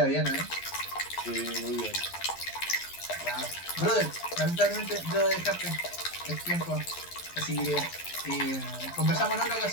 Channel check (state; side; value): late; right; 11 ms